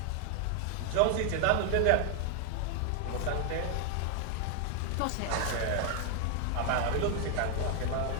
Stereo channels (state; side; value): different; both; correlation 0.00